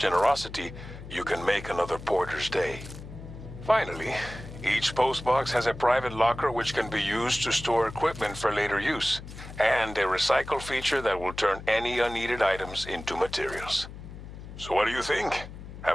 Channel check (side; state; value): left; noise; hum, 13 dB below the sound